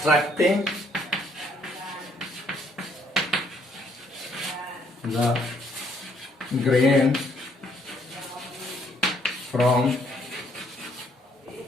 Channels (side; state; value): both; normal; correlation 0.67